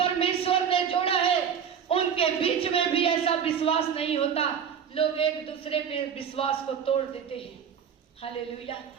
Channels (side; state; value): left; quieter; 7.7 dB